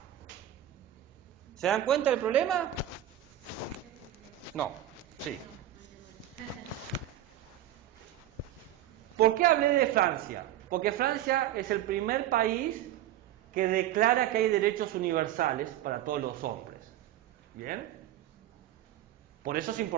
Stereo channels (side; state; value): left; quieter; 12.3 dB